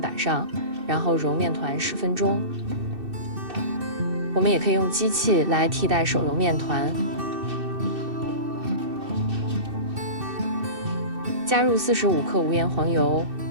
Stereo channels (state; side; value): late; left; 2.6 ms